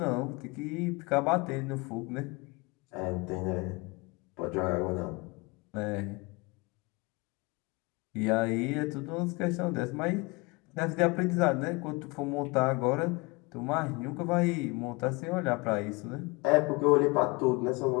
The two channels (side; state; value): right; quieter; 26.3 dB